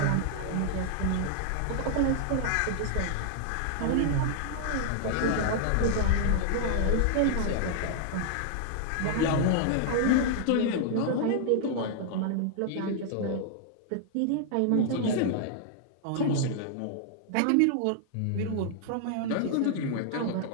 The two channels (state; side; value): different; both; correlation -0.01